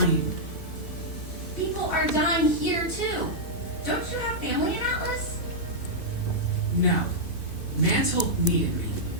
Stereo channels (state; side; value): late; right; 2.5 ms